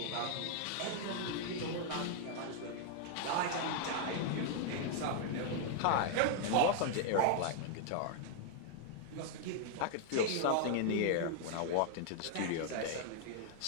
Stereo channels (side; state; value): both; different; correlation -0.01